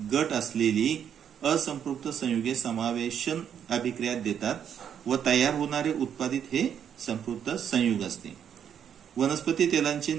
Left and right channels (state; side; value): quieter; left; 8.6 dB